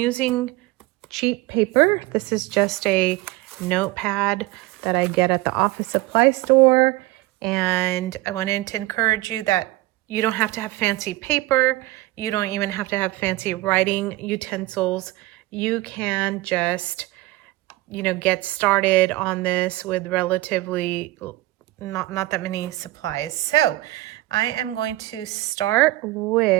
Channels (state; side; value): quieter; left; 18.7 dB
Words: cheap paper. This is just a notepad that I get at the office supply store, and I wanted to encourage you that you don't have to have fancy paper. You don't even have to have fancy writing utensils. You can just, you know, get started on this with relatively not that many supplies. So I am going to start